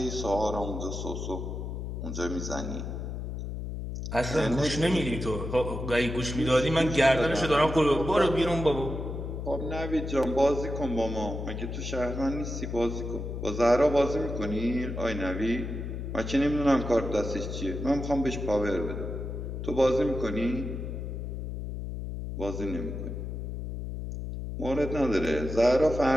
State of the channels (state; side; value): noise; left; hum, 5 dB below the sound